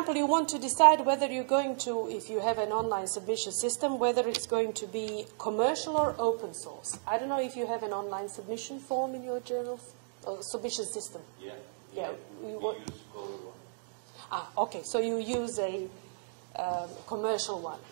you want to decide whether you're going to, if you have an online submission system, whether it's going to be commercial or open source. I don't know if you have an online submission form in your journals, or submission system. Yeah. We use Cover One. Okay. So you use a commercial one.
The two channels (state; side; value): silent; left; digital silence